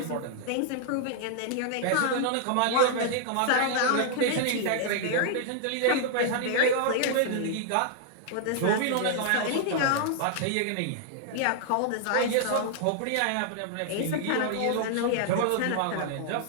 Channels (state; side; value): different; both; correlation 0.00